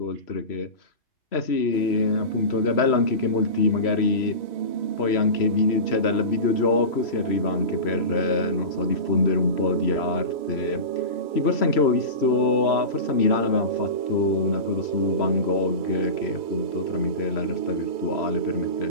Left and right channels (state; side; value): late; right; 3.0 ms